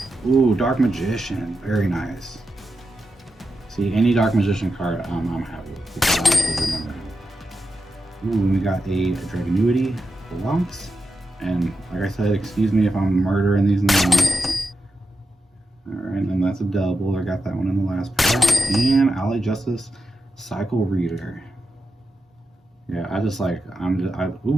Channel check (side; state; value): both; normal; correlation 0.89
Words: Ooh, Dark Magician. Very nice. See, any Dark Magician card I'm happy with because I actually remember him. Ooh, we got a Dragonuity, Blancs. And like I said, excuse me if I'm murdering these names. Alright, and then that's a double. I got that one in the last pack. And Alley Justice Cycle Reader. Yeah, I just like,